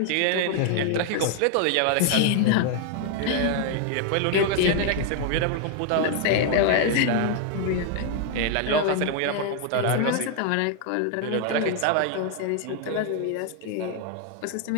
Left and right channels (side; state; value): both; different; correlation 0.00